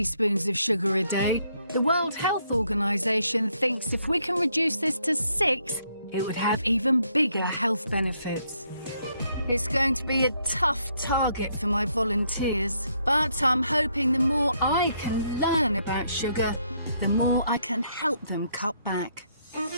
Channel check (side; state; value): both; inverted; correlation -0.73